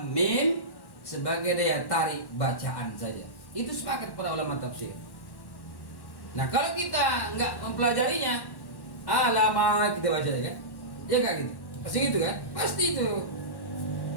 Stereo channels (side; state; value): right; late; 1.1 ms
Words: mim sebagai daya tarik bacaan saja. Itu sepakat para ulama tafsir. Nah, kalau kita enggak mempelajarinya, lama kita baca kan? Ya enggak gitu. Pasti gitu kan? Pasti itu.